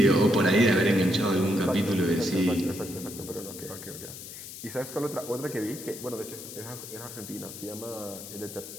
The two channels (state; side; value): noise; left; hiss, 12 dB below the sound